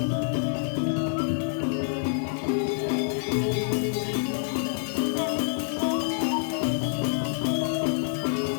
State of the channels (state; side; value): silent; right; digital silence